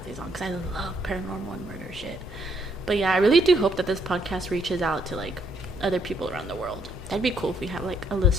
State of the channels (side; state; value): both; normal; correlation 0.71